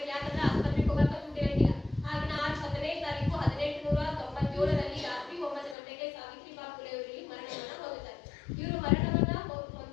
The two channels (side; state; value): right; drops out; at 5.8 s